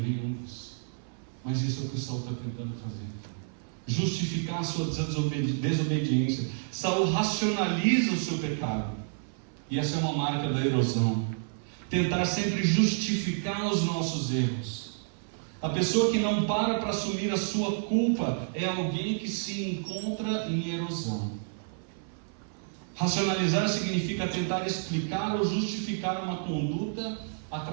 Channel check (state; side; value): silent; left; 58 dB below the other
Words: nenhum isso. Mas isso é o que o Saul está tentando fazer. Justificar a sua desobediência. Saul racionaliza o seu pecado. E essa é uma marca da erosão. Tentar sempre justificar os nossos erros. A pessoa que não para assumir a sua culpa é alguém que se encontra em erosão. Racionalizar significa tentar explicar ou justificar uma conduta